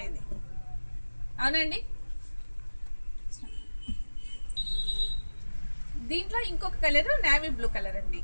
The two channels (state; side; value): inverted; both; correlation -1.00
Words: అవునండి. దీంట్లో ఇంకొక కలర్ నేవీ బ్లూ కలర్ అండి.